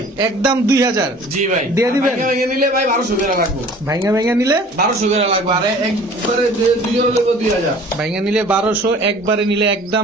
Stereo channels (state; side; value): normal; both; correlation 0.48